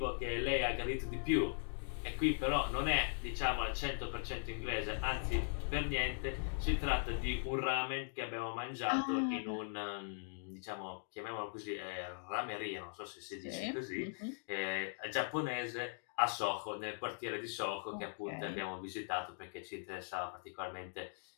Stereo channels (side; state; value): right; silent; digital silence